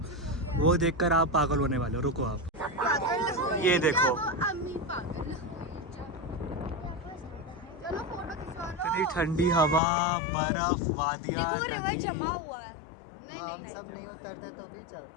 वो देखकर आप पागल होने वाले हो। रुको आप, ये देखो इतनी ठंडी हवा, बर्फ, वादियाँ, नदी।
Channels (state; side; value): drops out; right; at 9.8 s